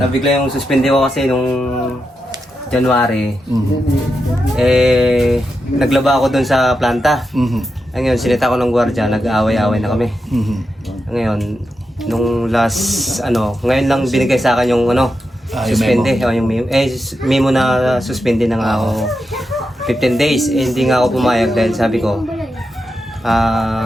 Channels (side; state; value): both; normal; correlation 0.87